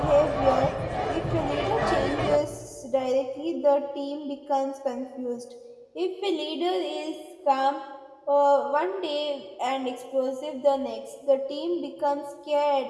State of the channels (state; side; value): identical; both; correlation 1.00